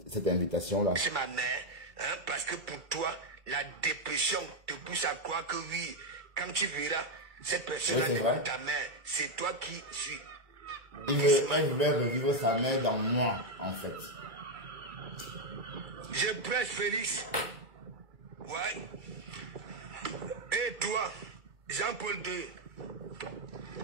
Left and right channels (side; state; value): left; late; 2.3 ms